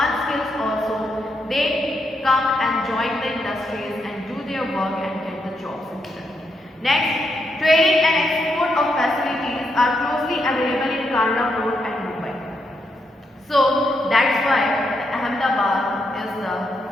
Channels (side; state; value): both; normal; correlation 0.80